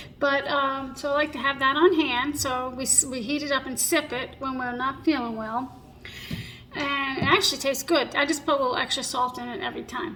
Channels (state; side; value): identical; both; correlation 1.00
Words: but so I like to have that on hand. So we heat it up and sip it when we're not feeling well. And it actually tastes good. I just put a little extra salt in it every time.